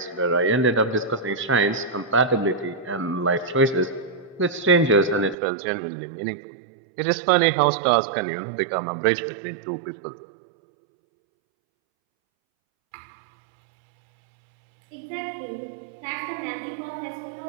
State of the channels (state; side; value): drops out; left; at 5.4 s